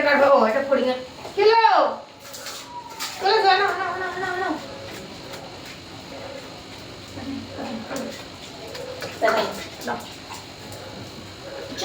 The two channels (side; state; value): both; identical; correlation 1.00